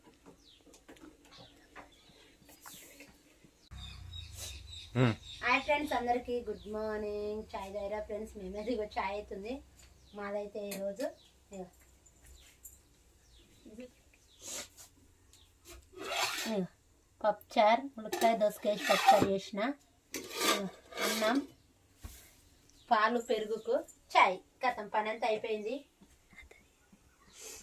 హాయ్ ఫ్రెండ్స్, అందరికీ గుడ్ మార్నింగ్. చాయ్ తాగిరా ఫ్రెండ్స్? మేమేది ఇగో చాయ్ అవుతుంది. మాదైతే ఈరోజు పప్పుచారు, ములక్కాయ దోసకాయ పప్పుచారు చేసిన, అన్నం, పాలు, పెరుగుకు చాయ్. కథం పని అంతా అయిపోయింది.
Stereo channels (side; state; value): both; identical; correlation 1.00